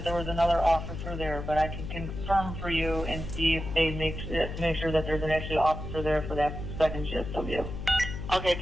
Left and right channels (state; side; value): noise; left; hum, 7 dB below the sound